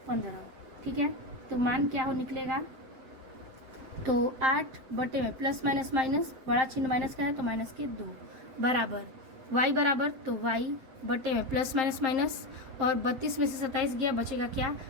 15। ठीक है, तो मान क्या हो निकलेगा, तो 8 बटे में प्लस माइनस माइनस, बड़ा चिन्ह माइनस का है तो माइनस के 2 बराबर y बराबर, तो y बटे में प्लस माइनस माइनस, और 32 में से 27 गया, बचेगा क्या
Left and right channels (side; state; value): left; late; 8.1 ms